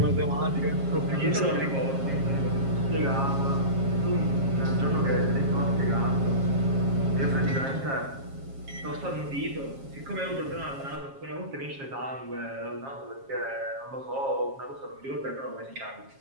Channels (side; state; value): left; late; 7.4 ms